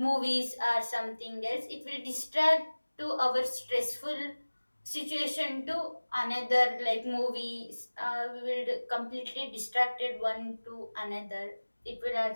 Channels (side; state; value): both; inverted; correlation -1.00